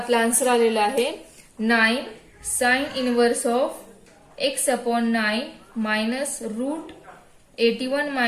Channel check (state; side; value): identical; both; correlation 1.00